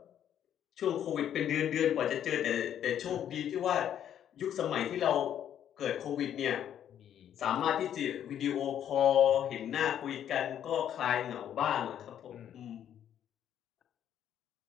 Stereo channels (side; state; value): right; quieter; 10.0 dB